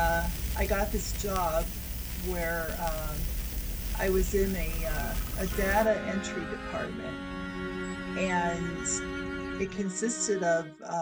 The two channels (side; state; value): both; identical; correlation 1.00